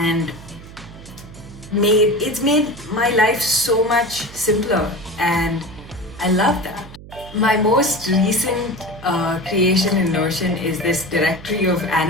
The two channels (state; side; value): noise; right; hum, 17 dB below the sound